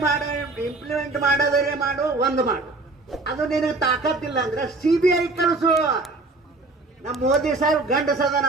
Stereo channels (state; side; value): quieter; left; 3.3 dB